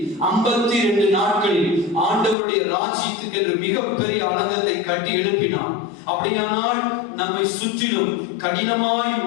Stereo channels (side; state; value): right; drops out; at 2.4 s